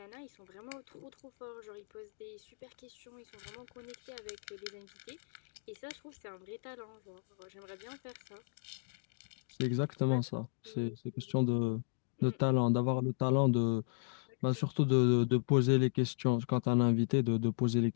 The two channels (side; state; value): right; silent; digital silence